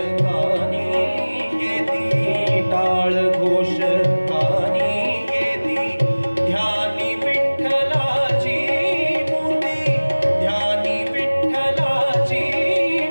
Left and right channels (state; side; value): inverted; both; correlation -1.00